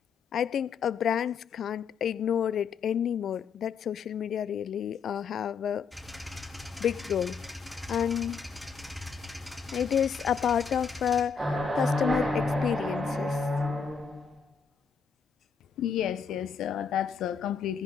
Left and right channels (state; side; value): quieter; right; 6.0 dB